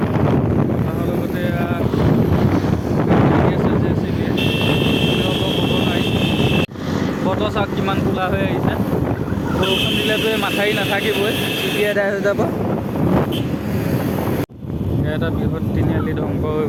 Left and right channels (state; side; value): identical; both; correlation 1.00